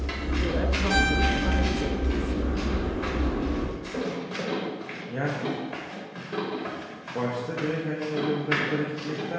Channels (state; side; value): identical; both; correlation 1.00